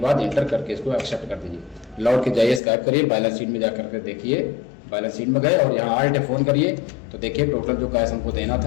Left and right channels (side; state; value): right; drops out; at 2.6 s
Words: बाद एंटर करके इसको एक्सेप्ट कर दीजिए। लौट के जाइए, स्काइप करिए, बैलेंस शीट में जाकर के देखिए। बैलेंस शीट में गए और यहाँ Alt F1 करिए तो देखिए टोटल जो कैश हमको देना